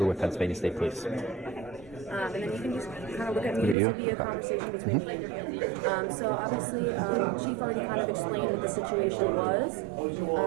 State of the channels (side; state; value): left; drops out; at 3.8 s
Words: with Pennsylvania State Police. And then you can just kind of look at me. This will be a conversation between me and you. So obviously, Chief already kind of explained what the situation was.